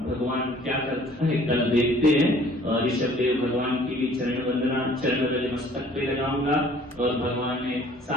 भगवान क्या करता है कल देखते हैं। और ऋषभ देव भगवान की भी चरण वंदना चरण मस्तक पे लगाऊंगा। और भगवान ने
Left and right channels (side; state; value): both; normal; correlation 0.54